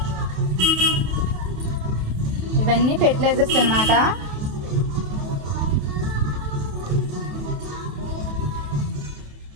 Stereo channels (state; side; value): late; left; 28 ms